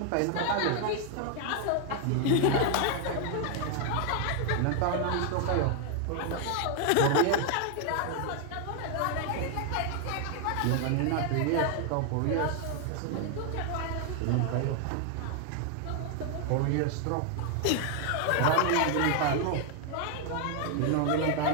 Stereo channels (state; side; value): different; both; correlation 0.00